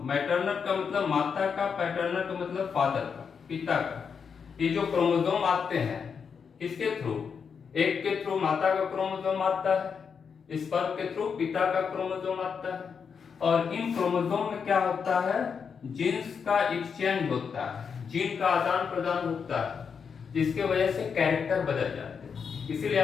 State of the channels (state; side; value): quieter; right; 6.3 dB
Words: मैटरनल का मतलब माता का, पैटर्नल का मतलब फादर का, पिता का। ये जो क्रोमोसोम आते हैं किसके थ्रू? एक के थ्रू माता का क्रोमोसोम आता है, स्पर्म के थ्रू पिता का क्रोमोसोम आता है। और इन क्रोमोसोम में क्या होता है? जीन्स का एक्सचेंज होता है, जीन का आदान प्रदान होता है, जिसके वजह से कैरेक्टर बदल जाते हैं। इसीलिए